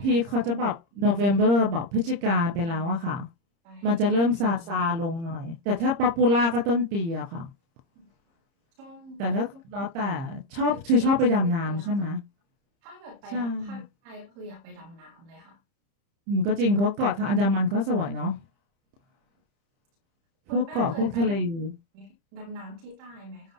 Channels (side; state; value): left; late; 30 ms